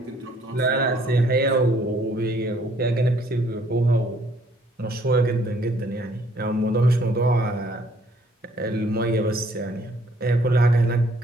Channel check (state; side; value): normal; both; correlation 0.63